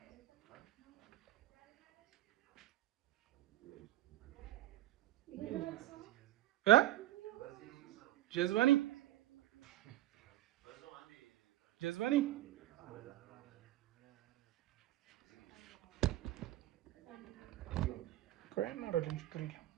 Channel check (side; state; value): left; quieter; 15.0 dB